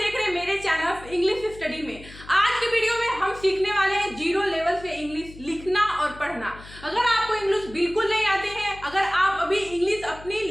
रहे हैं मेरे चैनल इंग्लिश स्टडी में। आज के वीडियो में हम सीखने वाले हैं जीरो लेवल से इंग्लिश लिखना और पढ़ना। अगर आपको इंग्लिश बिल्कुल नहीं आते हैं, अगर आप अभी इंग्लिश अपनी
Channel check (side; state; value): left; noise; hum, 18 dB below the sound